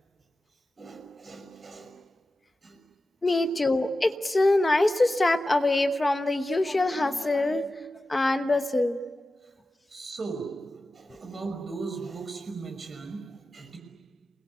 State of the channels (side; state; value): both; normal; correlation 0.93